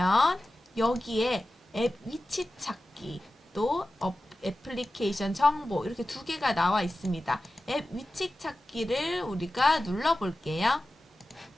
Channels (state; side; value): normal; both; correlation 0.94